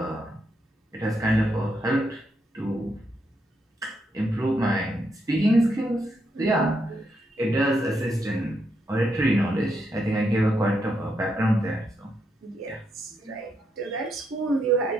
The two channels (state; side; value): normal; both; correlation 0.80